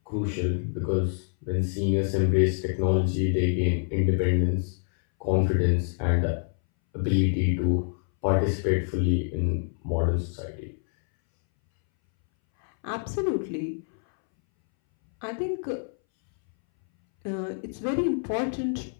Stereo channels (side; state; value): right; silent; 61 dB below the other